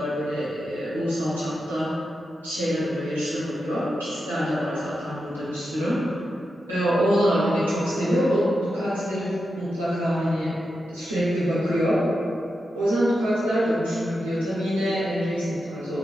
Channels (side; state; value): both; normal; correlation 0.88